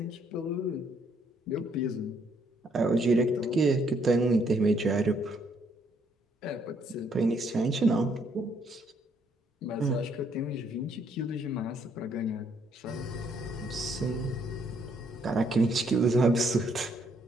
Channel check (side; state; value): both; normal; correlation 0.70